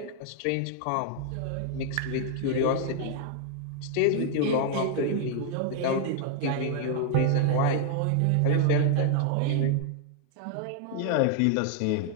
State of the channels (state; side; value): different; both; correlation 0.00